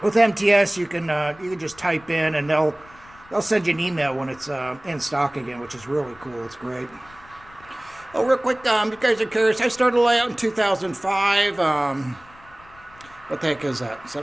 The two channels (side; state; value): left; noise; rumble, 24 dB below the sound